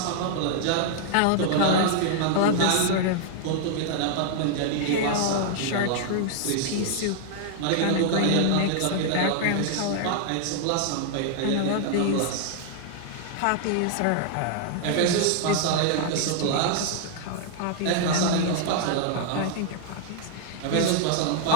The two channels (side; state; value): both; different; correlation -0.01